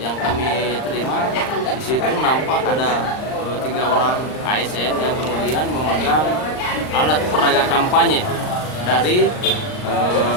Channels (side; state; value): right; late; 39 ms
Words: yang kami terima di situ nampak ada 3 orang ASN yang kemudian memegang alat peraga kampanye dari